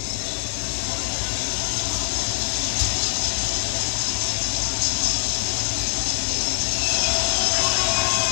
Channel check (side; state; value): right; silent; digital silence